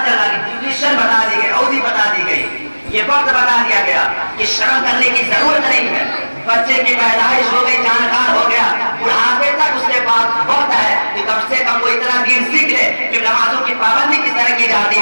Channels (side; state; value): both; inverted; correlation -1.00